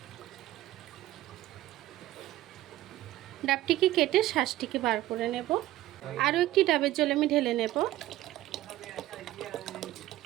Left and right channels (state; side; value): quieter; left; 15.4 dB